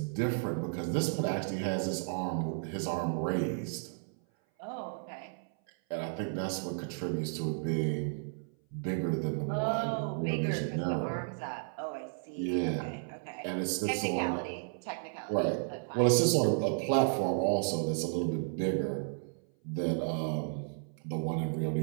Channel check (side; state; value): left; silent; 56 dB below the other